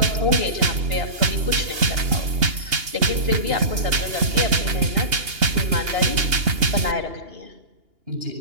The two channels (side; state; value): left; late; 2.8 ms